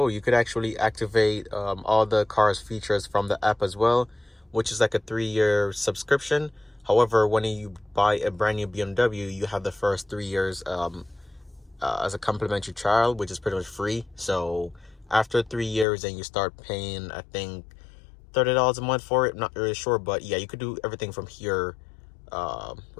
You could actually activate all the car's features from the app as well, which is like a 3-year subscription. However, when you buy a brand new BMW, you have the first 3 years as a complimentary trial, which is pretty much free. So after 3 years, then you start paying, I think, $30 a month for it. I'm not really sure, but yeah, you could do everything from here,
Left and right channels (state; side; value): drops out; right; at 15.9 s